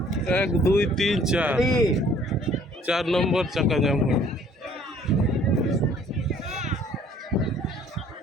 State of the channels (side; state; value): both; normal; correlation 0.57